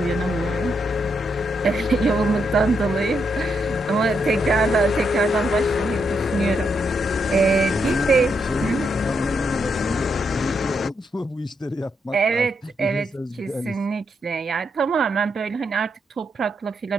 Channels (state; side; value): normal; both; correlation 0.80